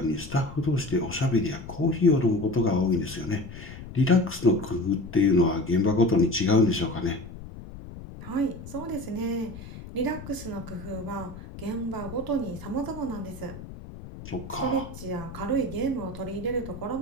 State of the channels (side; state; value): left; noise; rumble, 13 dB below the sound